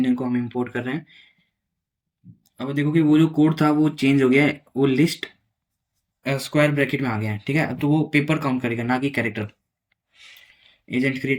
को हम इंपोर्ट कर रहे हैं। अब देखो कि वो जो कोड था वो चेंज हो गया है, वो लिस्ट स्क्वायर ब्रैकेट में आ गया है, ठीक है। अब तो वो पेपर काउंट करेगा, ना कि कैरेक्टर। एजेंट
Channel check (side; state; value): both; identical; correlation 1.00